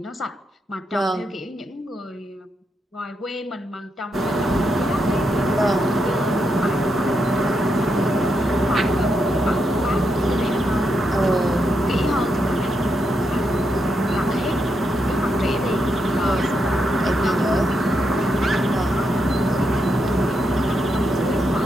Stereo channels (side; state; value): both; normal; correlation 0.82